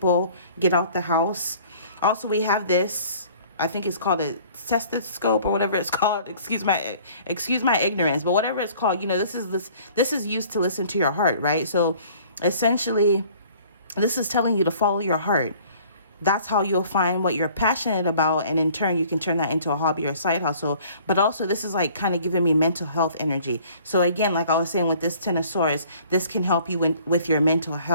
get out the house. Also, we have this, I think it's called a stethoscope or whatever it's called. Excuse my ignorance, but whatever it's called, you know, this is used to listen to your heart, right? So essentially, this is telling you to follow your heart. That's how you'll find what you're passionate about, and in turn you can turn that into a hobby or a side hustle. But also, this is like kind of giving me mental health energy. So again, like I was saying with this Ten of Swords, this can help you with your mental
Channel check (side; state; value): both; inverted; correlation -0.53